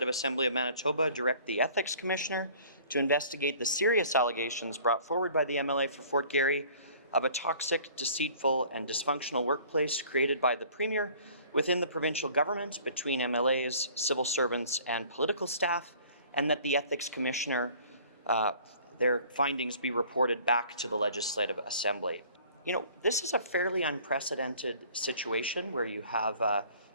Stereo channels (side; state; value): both; inverted; correlation -0.51